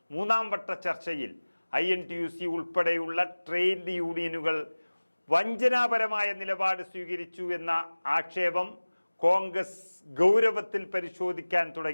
മൂന്നാം വട്ട ചർച്ചയിൽ INTUC ഉൾപ്പെടെയുള്ള ട്രേഡ് യൂണിയനുകൾ വഞ്ചനാപരമായ നിലപാട് സ്വീകരിച്ചു എന്ന ആക്ഷേപം കോൺഗ്രസ് ഗൗരവത്തിൽ പരിശോധിക്കാൻ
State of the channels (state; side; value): inverted; both; correlation -1.00